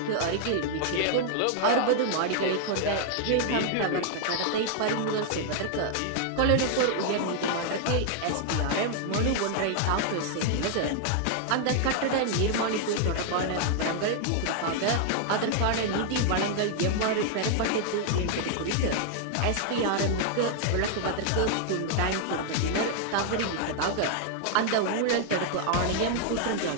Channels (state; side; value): different; both; correlation 0.00